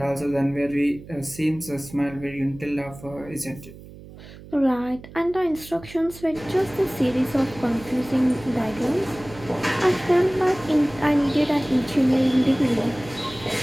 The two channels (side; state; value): right; noise; hum, 17 dB below the sound